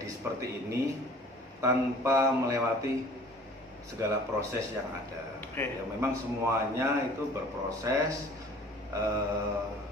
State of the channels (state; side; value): normal; both; correlation 0.49